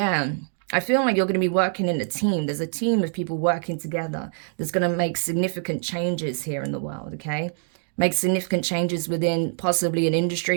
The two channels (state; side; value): silent; left; 60 dB below the other